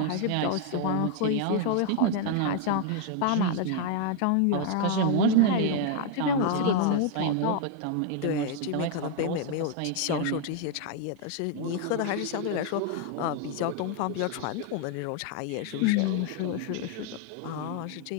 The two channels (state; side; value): different; both; correlation 0.00